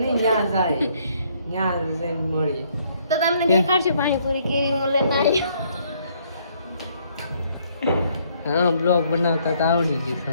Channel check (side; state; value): both; inverted; correlation -0.67